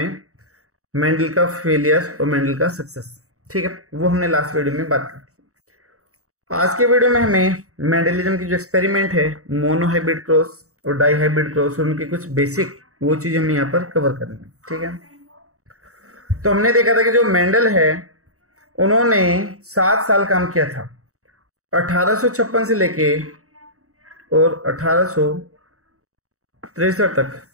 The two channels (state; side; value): late; left; 0.65 ms